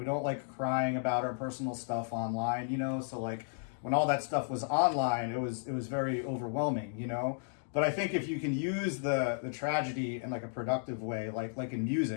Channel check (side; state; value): right; silent; digital silence